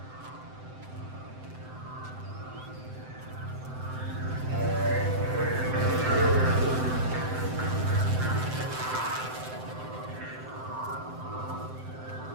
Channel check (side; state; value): left; late; 7.8 ms